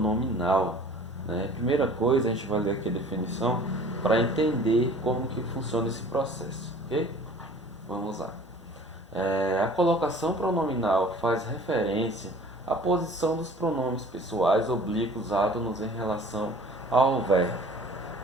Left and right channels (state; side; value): normal; both; correlation 0.48